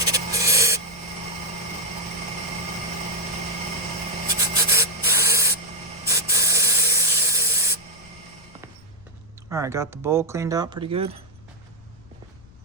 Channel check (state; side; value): noise; left; rumble, 24 dB below the sound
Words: All right, got the bowl cleaned out pretty good.